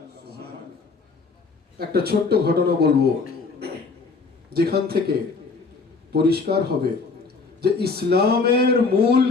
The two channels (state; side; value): quieter; right; 4.4 dB